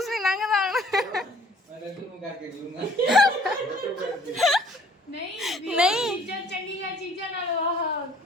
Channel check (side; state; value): both; normal; correlation 0.57